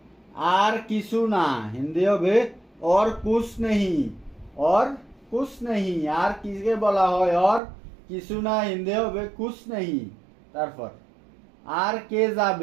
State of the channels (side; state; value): left; drops out; at 7.6 s